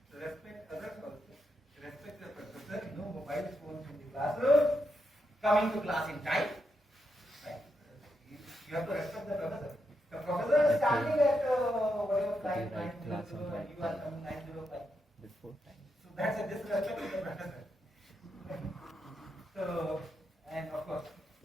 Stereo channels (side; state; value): both; normal; correlation 0.83